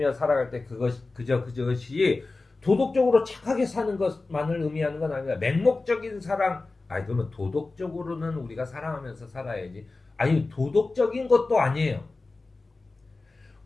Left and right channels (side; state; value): right; quieter; 3.5 dB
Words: 살아갈 때 그것이 도덕적으로 착하게 사는 것만을 의미하는 건 아니라 맹목적인 사랑. 그러면 도덕적으로는 우리가 사랑하면서 살아야지. 도덕적인 것도 아니에요.